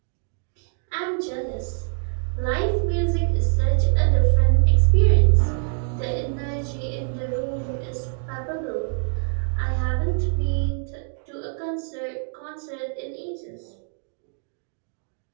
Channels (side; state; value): left; silent; digital silence